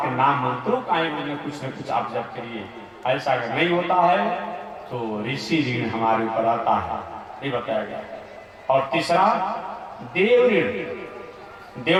नाम मंत्रों का ही कुछ न कुछ आप जप करिए। ऐसा अगर नहीं होता है तो ऋषि ऋण हमारे ऊपर आता है, ये बताया गया। और तीसरा देव ऋण।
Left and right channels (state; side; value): identical; both; correlation 1.00